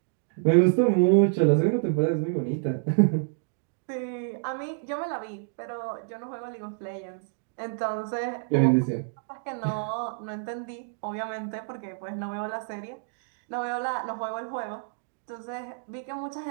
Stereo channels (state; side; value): silent; left; digital silence